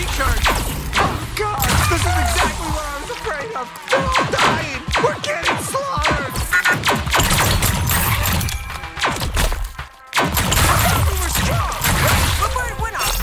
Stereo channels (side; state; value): both; identical; correlation 1.00